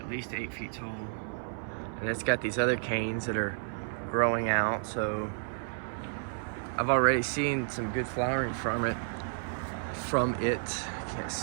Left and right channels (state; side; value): silent; left; 57 dB below the other